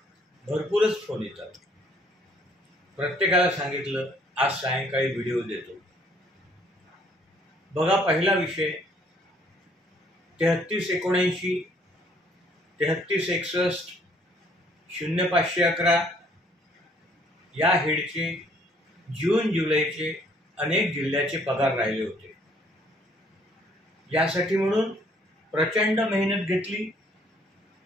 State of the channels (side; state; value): both; normal; correlation 0.63